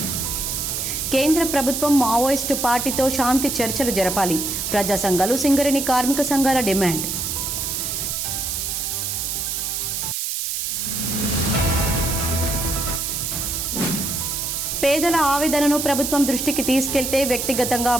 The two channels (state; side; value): noise; right; hiss, 2 dB below the sound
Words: కేంద్ర ప్రభుత్వం మావోయిస్టు పార్టీతో శాంతి చర్చలు జరపాలి. ప్రజా సంఘాలు, సింగరేణి కార్మిక సంఘాల డిమాండ్. పేదల ఆవేదనను ప్రభుత్వం దృష్టికి తీసుకెళ్తే వ్యక్తిగతంగా